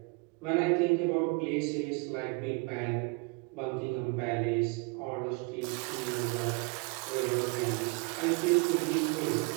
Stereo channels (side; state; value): left; quieter; 30.7 dB